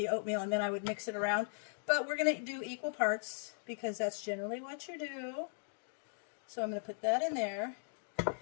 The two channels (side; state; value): right; silent; digital silence